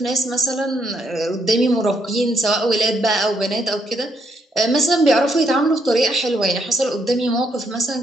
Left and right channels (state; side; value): normal; both; correlation 0.74